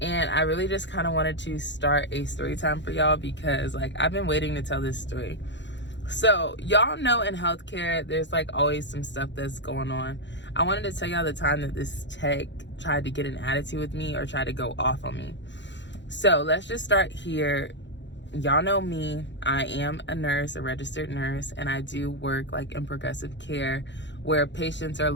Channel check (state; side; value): late; right; 0.52 ms